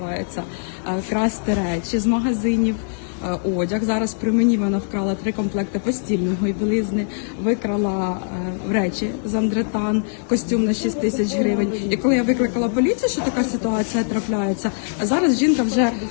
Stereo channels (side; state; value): right; silent; digital silence